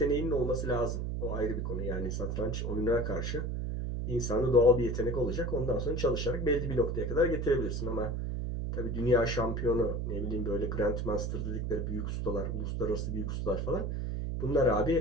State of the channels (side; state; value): right; noise; hum, 2 dB below the sound